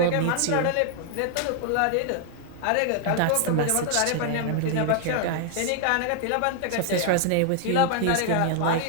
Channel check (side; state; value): both; different; correlation 0.00